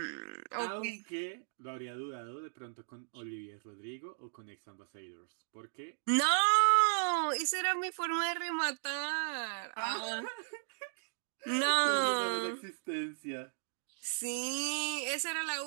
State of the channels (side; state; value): left; silent; digital silence